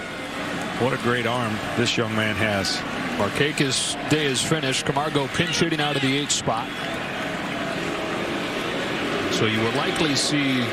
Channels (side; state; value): both; identical; correlation 1.00